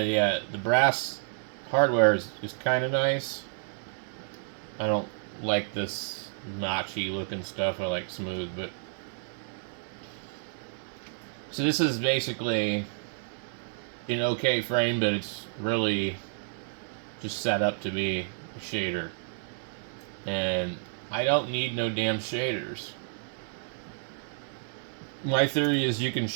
yeah, the brass hardware is kind of nice. I don't like this notchy looking stuff. I like smooth, but so this is basically an okay frame, but it's really just set up to be a shader. And I don't need no damn shaders. My theory is you can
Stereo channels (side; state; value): left; silent; 58 dB below the other